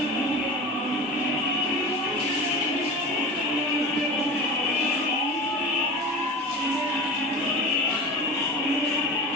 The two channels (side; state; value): both; normal; correlation 0.32